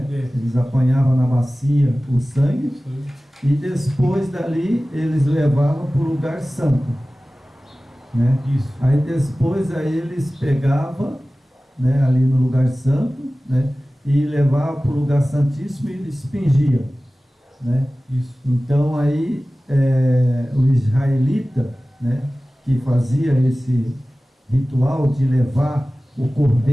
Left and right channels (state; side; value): normal; both; correlation 0.97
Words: Eles apanhavam na bacia o sangue, e depois dali eles levavam para o lugar santo, né? Isso. Aí depois eles pegavam, né, ali no lugar santo, né? E levavam para o lugar santíssimo e expingiam, né? Isso. Então aí o israelita, né, que fazia esse ritual de levar o